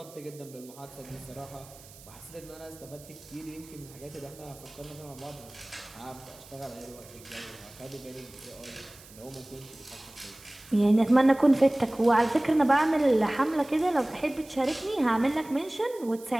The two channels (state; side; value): noise; right; hiss, 21 dB below the sound